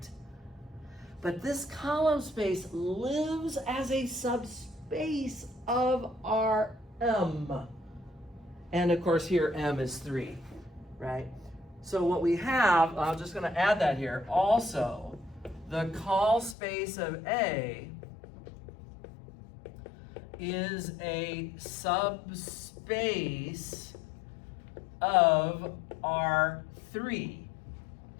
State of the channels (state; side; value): drops out; right; at 16.6 s